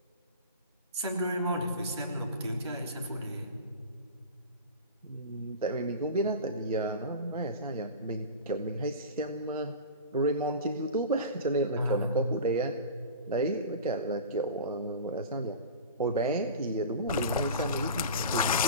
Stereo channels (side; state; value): both; inverted; correlation -0.32